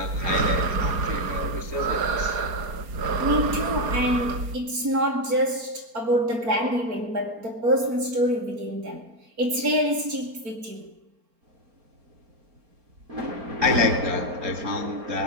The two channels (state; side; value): late; left; 4.3 ms